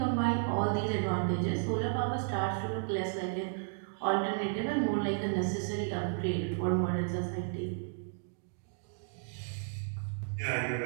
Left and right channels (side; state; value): left; silent; digital silence